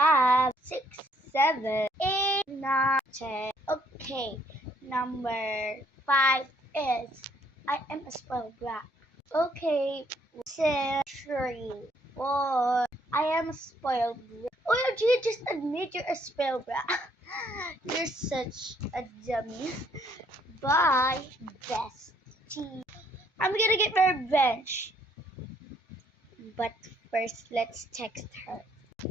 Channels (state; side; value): normal; both; correlation 0.66